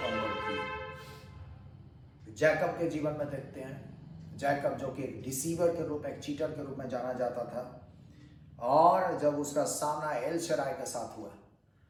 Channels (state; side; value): identical; both; correlation 1.00